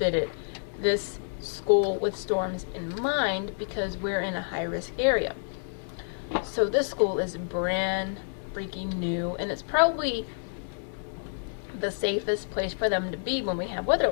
this school with storms in mind because we're in a high-risk area. So this school is brand freaking new, and it's probably the safest place for them to be when we have weather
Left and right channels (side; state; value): right; silent; digital silence